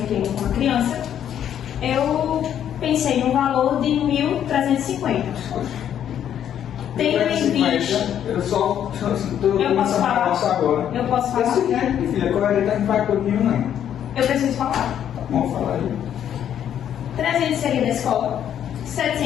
com a criança, eu pensei no valor de 1.350. Tendo em vista... Eu só estou Eu posso falar? agora. Eu posso falar? É o seguinte, filha, coerente não vai comigo, não. Eu preciso falar. Vamos falar aí. 300 seria da escola,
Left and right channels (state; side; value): quieter; right; 9.8 dB